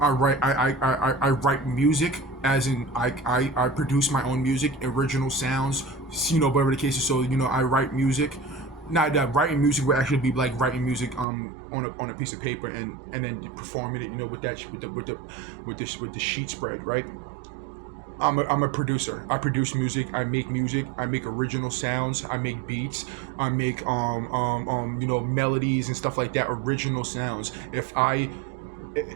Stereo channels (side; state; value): left; drops out; at 11.2 s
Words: I write music. As in, I produce my own music, original sounds. Whatever the case is. So I write music. Now that writing music would actually be like writing music on a piece of paper and then performing it, with the sheet spread, right? I'm a producer. I produce music. I make original sounds. I make beats. I make melodies and stuff like that. Original sounds.